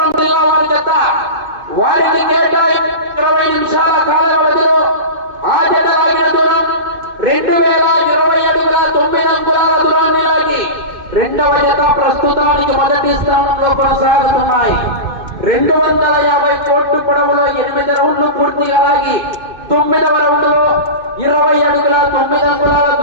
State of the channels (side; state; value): left; late; 2.5 ms